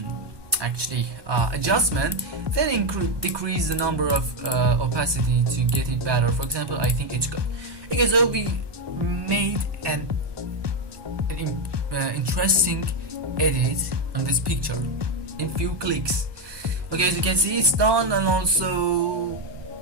actually adjustment, then decrease the number of opacity to get it better. For example, I think it's good. Okay, so we made an interesting edit on this picture in few clicks. Okay, as you can see, it's done, and also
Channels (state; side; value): late; left; 1.2 ms